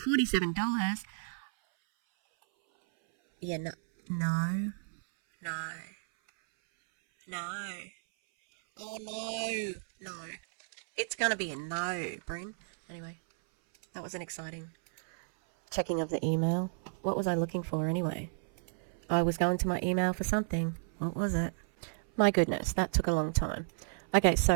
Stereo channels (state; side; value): silent; left; 56 dB below the other